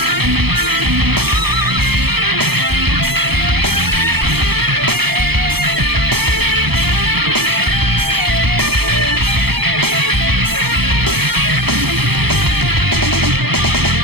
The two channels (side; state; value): left; late; 0.96 ms